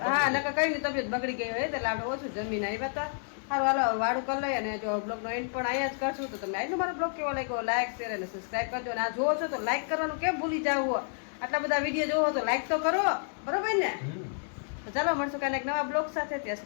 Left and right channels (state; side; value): silent; right; digital silence